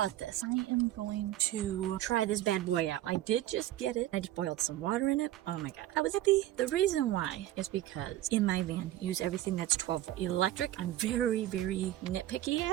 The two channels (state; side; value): quieter; left; 14.0 dB